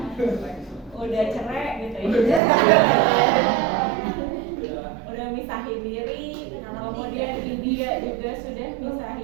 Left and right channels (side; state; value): left; drops out; at 2.4 s